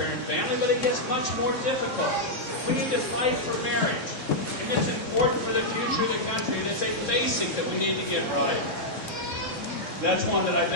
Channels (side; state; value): right; late; 3.6 ms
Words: family, but it gets much more difficult. We need to fight for marriage, and it's important for the future of the country, and it's a basic that we need to get right. That's one that I